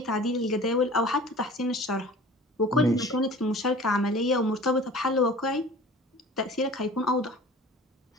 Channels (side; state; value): both; normal; correlation 0.43